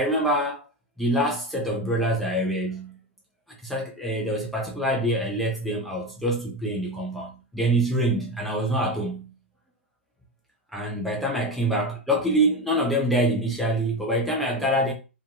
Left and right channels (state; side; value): normal; both; correlation 0.20